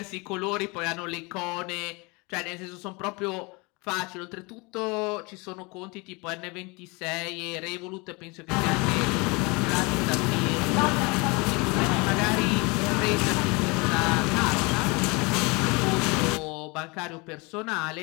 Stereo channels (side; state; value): right; quieter; 27.5 dB